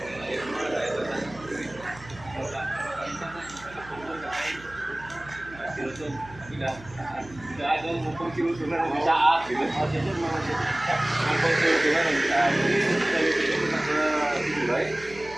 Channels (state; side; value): noise; right; hum, 19 dB below the sound